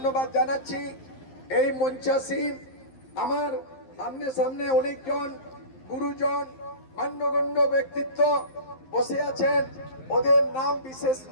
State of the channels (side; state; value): right; late; 11 ms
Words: জানাচ্ছি। এই মঞ্চাসীন আমার সামনে সামনে অনেকজন গুরুজন মান্যগণ্য ব্যক্তিত্ব বসে আছেন, ওদের নাম বিশেষ